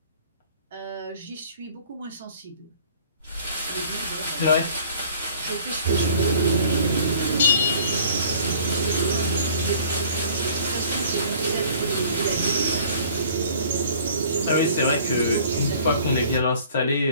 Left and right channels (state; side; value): inverted; both; correlation -0.52